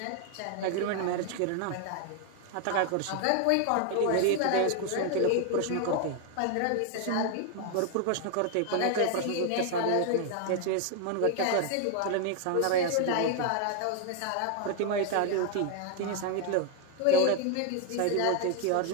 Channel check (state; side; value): different; both; correlation 0.01